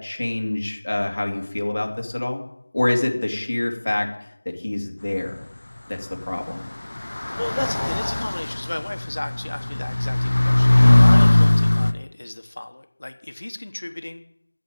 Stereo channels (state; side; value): inverted; both; correlation -1.00